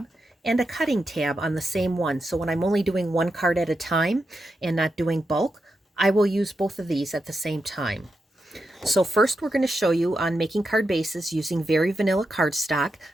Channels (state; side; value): normal; both; correlation 0.87